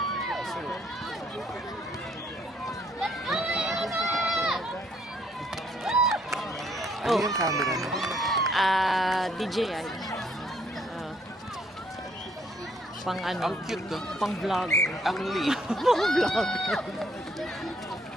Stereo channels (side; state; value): both; normal; correlation 0.67